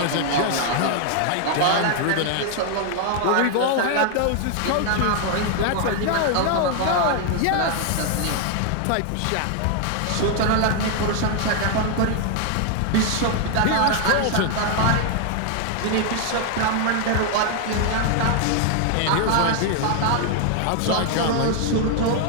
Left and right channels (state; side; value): different; both; correlation 0.00